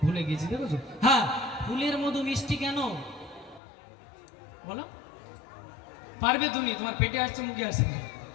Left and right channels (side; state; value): right; drops out; at 3.6 s